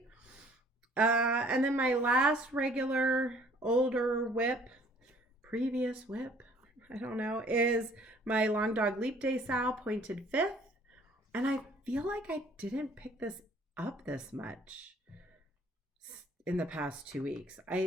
And then my last regular older previous whip, I don't know, is my Long Dog Leap Day Sow pointed 5th. And I feel like I didn't pick this up this much in the past 2 weeks.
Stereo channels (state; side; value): normal; both; correlation 0.57